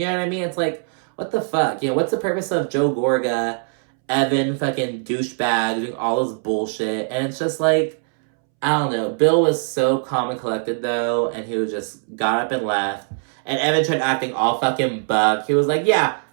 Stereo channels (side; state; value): left; silent; 65 dB below the other